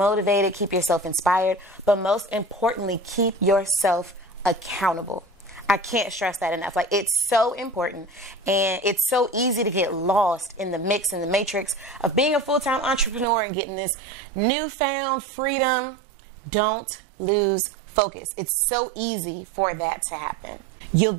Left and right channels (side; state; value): left; drops out; at 13.2 s